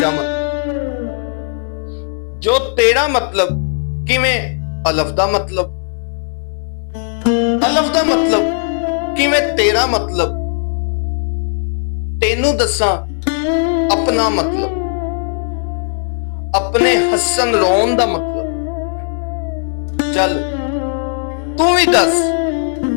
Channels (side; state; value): right; silent; digital silence